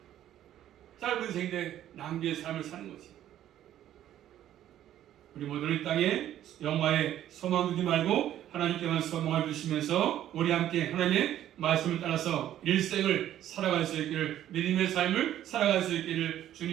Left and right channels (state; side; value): quieter; left; 11.9 dB